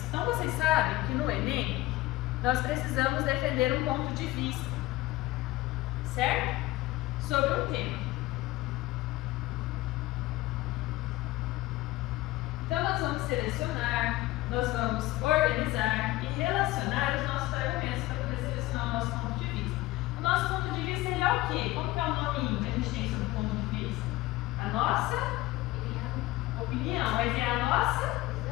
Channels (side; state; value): right; quieter; 18.1 dB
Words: Então, vocês sabem que no Enem, nós precisamos defender um ponto de vista, certo? Sobre um tema. Então, nós vamos selecionar, nós vamos organizar e relacionar os nossos argumentos para poder selecionar o nosso ponto de vista. O nosso ponto de vista ele é o quê? Como que é o nominho que a gente tem sobre o ponto de vista? A nossa opinião. Mas é a nossa?